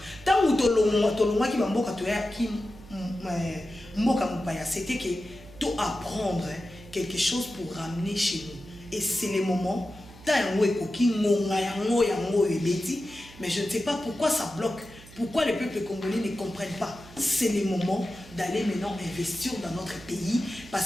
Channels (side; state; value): right; noise; hum, 20 dB below the sound